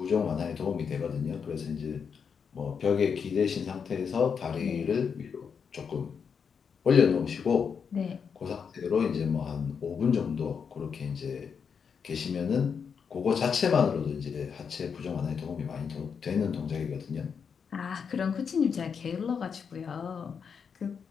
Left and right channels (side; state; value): right; quieter; 6.5 dB